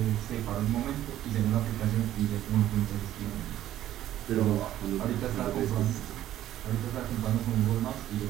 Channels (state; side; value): quieter; left; 12.7 dB